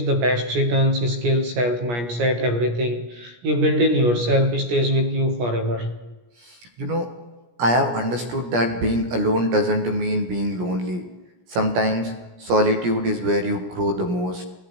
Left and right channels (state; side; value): late; left; 17 ms